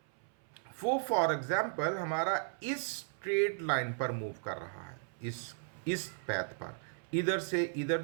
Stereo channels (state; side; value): silent; left; 54 dB below the other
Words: वो फॉर एग्जाम्पल हमारा इस स्ट्रेट लाइन पर मूव कर रहा है, इस पैथ पर, इधर से इधर